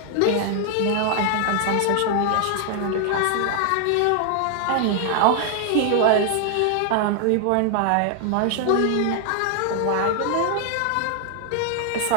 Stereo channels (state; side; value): different; both; correlation 0.00